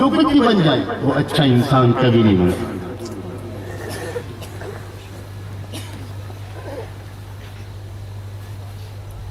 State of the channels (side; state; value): both; identical; correlation 1.00